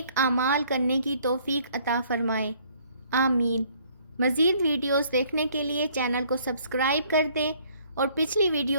اعمال کرنے کی توفیق عطا فرمائے۔ آمین۔ مزید ویڈیوز دیکھنے کے لیے چینل کو سبسکرائب کر دیں اور پچھلی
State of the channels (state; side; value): inverted; both; correlation -0.61